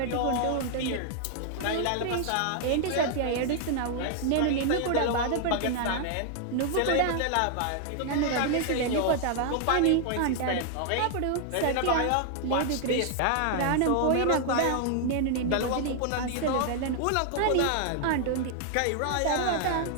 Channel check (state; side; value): different; both; correlation 0.00